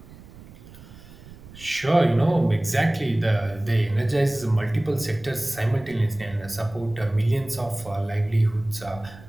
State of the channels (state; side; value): noise; right; rumble, 19 dB below the sound